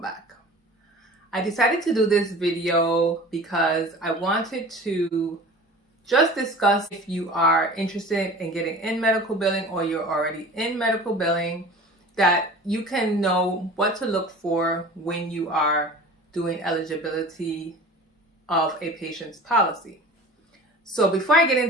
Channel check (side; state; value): both; normal; correlation 0.40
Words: I decided to do this video because I wanted to just discuss if you are interested in getting in medical billing or you're already in medical billing, that you can know what to look for when you are doing eligibility of a patient's policy. So before I get